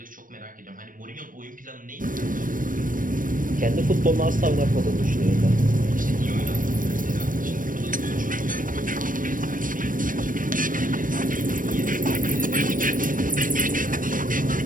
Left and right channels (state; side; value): late; left; 0.40 ms